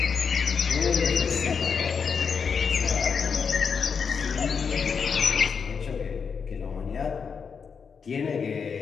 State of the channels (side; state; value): right; quieter; 6.0 dB